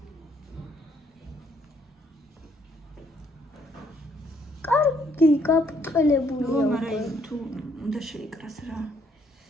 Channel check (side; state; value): both; normal; correlation 0.68